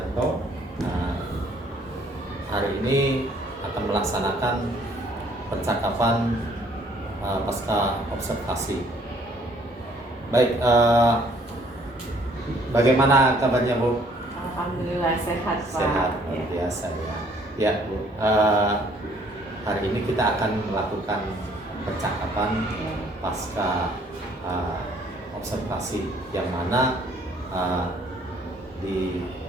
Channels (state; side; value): normal; both; correlation 0.61